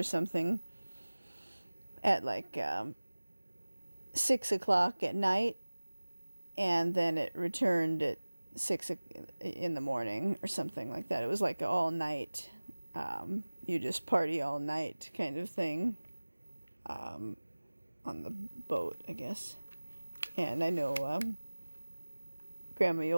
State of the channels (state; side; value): inverted; both; correlation -1.00